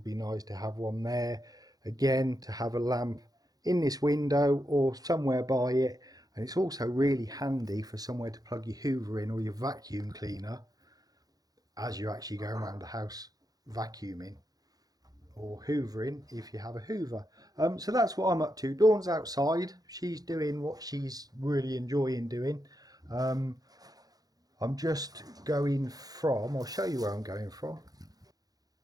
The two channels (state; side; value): late; left; 0.18 ms